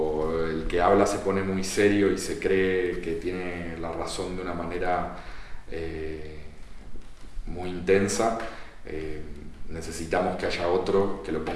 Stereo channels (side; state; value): both; identical; correlation 1.00